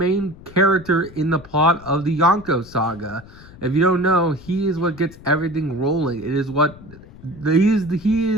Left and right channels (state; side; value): noise; left; rumble, 20 dB below the sound